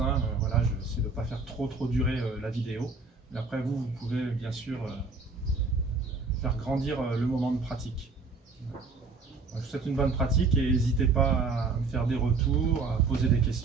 Voilà, j'essaie de ne pas faire trop durer la vidéo. Mais après, vous pouvez bien sûr faire grandir le moment de pratique. Je vous souhaite une bonne pratique et n'hésitez pas à me faire des retours, à poser des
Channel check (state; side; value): quieter; left; 4.2 dB